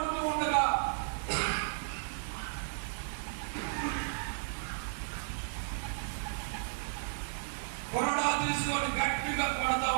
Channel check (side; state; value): left; silent; digital silence